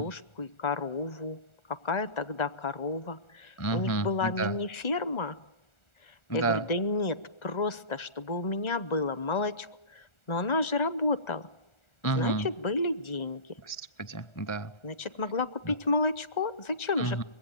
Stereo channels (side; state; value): right; late; 1.4 ms